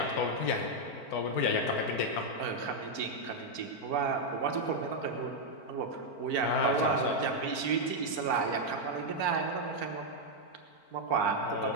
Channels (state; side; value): late; right; 4.5 ms